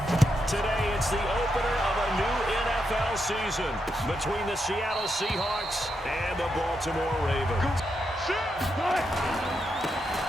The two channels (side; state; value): both; normal; correlation 0.83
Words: Today, it's the opener of a new NFL season between the Seattle Seahawks and the Baltimore Ravens.